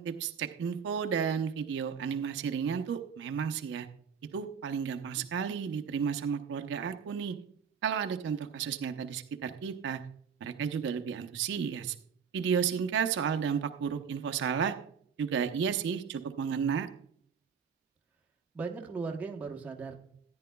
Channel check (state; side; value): quieter; left; 6.8 dB